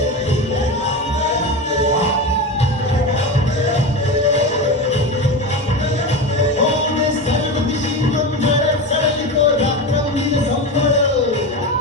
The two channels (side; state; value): both; normal; correlation 0.22